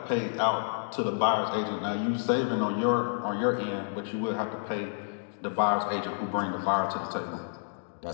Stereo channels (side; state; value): right; silent; digital silence